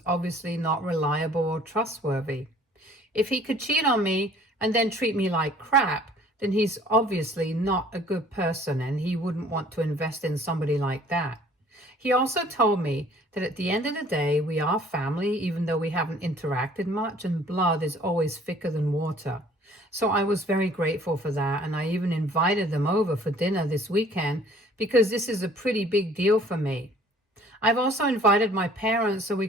obviously not reliable or trustworthy. If he could cheat on me and then treat me like crap, then he's obviously not a good person and he wouldn't want to invest in somebody like that. He also told me that at the end of the day, we are family, even though we haven't interacted much, and blood is always thicker than water. So I was very grateful for that, and I even invited them over for dinner this weekend because this is a pretty big deal for me. I've also invited my parents so we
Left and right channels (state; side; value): normal; both; correlation 0.54